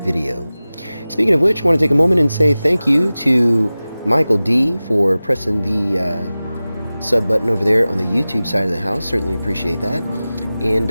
video. Speaking of which, I want to take a moment and say thank you to Michael D for pressing the sub button over there on the YouTube side of the house. Certainly appreciate that, and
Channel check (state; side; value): inverted; both; correlation -0.97